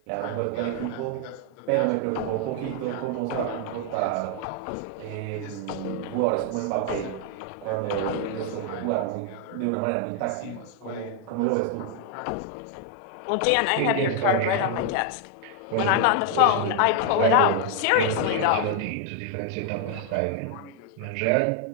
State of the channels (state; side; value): different; both; correlation 0.00